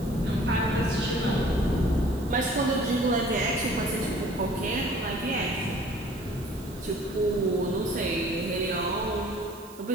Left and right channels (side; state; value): right; noise; hiss, 21 dB below the sound